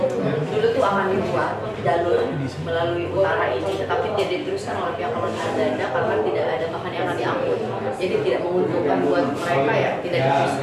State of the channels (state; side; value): identical; both; correlation 1.00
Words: Dulu tuh akan dibuat jalur melalui utara ini, tetapi tidak diteruskan oleh pihak kolonial Belanda karena tidak ada bahan yang akan diangkut. Jadi tidak menguntungkan buat mereka ya, tidak